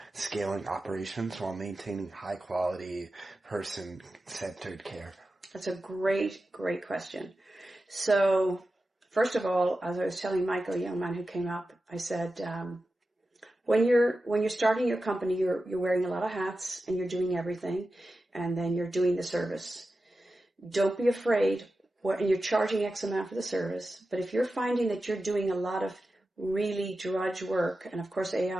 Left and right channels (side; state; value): both; normal; correlation 0.93